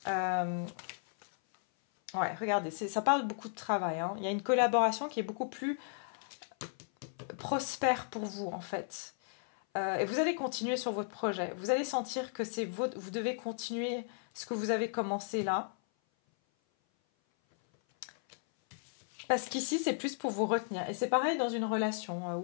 Ouais, regardez, ça parle beaucoup de travail. Hein. Il y a une collaboration qui est beaucoup plus prospère pour vous, en fait. Et vous allez continuer sur votre projet. Vous allez sentir que vous devez continuer ce que vous avez commencé là. Parce qu'ici, c'est plus pour vous retenir. Et c'est pareil dans une relation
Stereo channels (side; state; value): right; silent; 55 dB below the other